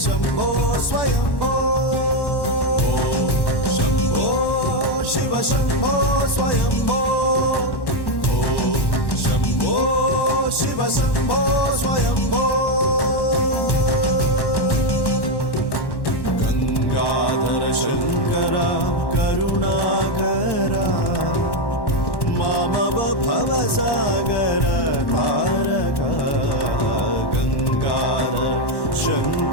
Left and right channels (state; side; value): late; right; 1.1 ms